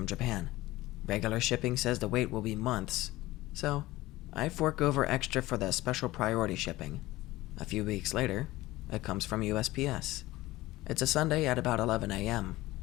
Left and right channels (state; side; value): quieter; right; 18.1 dB